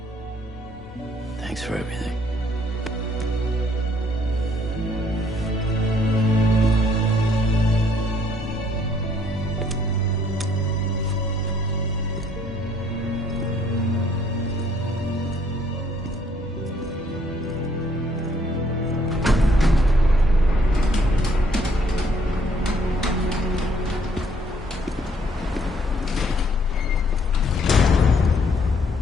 Thanks for everything.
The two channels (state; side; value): normal; both; correlation 0.65